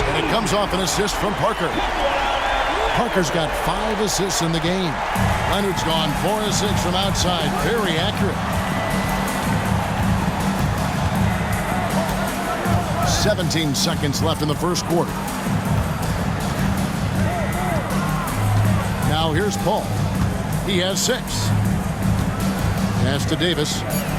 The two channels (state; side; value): identical; both; correlation 1.00